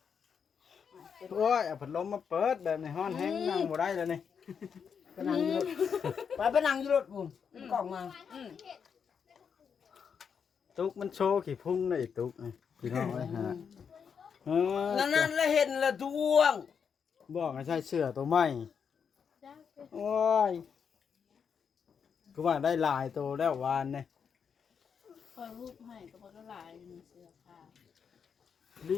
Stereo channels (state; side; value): quieter; right; 6.8 dB